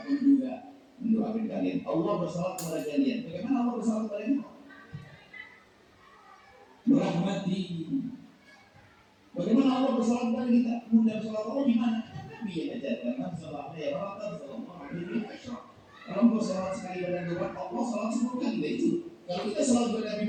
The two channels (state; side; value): identical; both; correlation 1.00